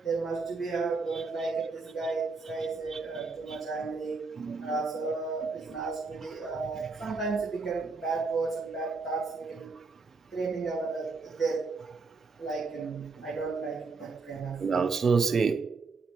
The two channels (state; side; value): quieter; left; 4.2 dB